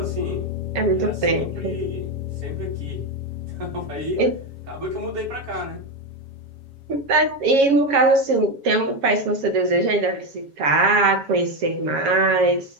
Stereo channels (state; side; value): late; left; 7.2 ms